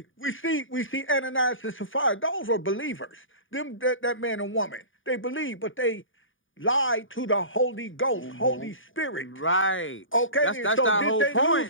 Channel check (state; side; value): late; right; 0.57 ms